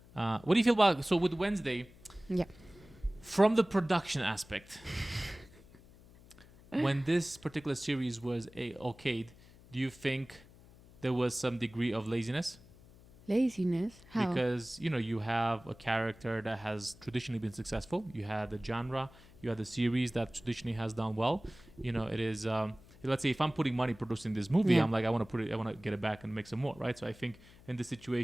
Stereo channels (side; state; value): left; noise; hum, 23 dB below the sound